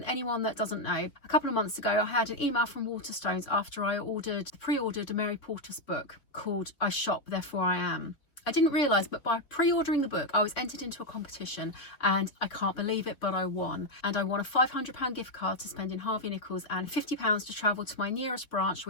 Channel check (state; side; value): late; right; 3.5 ms